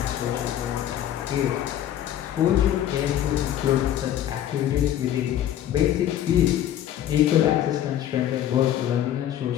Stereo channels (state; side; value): quieter; right; 11.4 dB